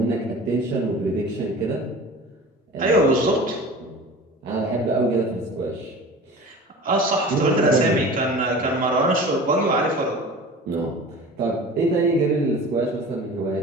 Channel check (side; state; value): both; normal; correlation 0.38